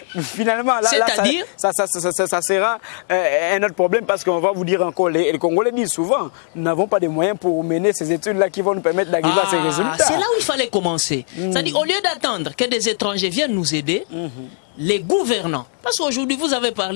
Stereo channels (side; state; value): right; silent; 65 dB below the other